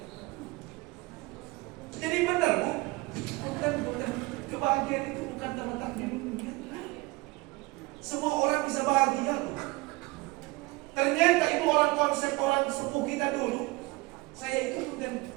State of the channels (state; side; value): quieter; left; 23.1 dB